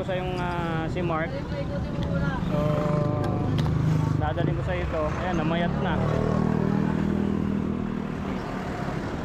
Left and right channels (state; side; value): identical; both; correlation 1.00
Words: yung si Mark. So dadalhin ko sa ito. Ayan, namayat na.